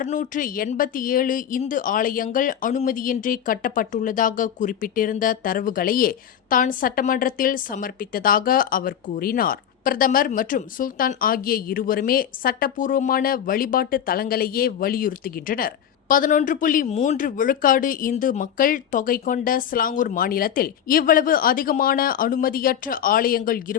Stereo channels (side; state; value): right; quieter; 9.3 dB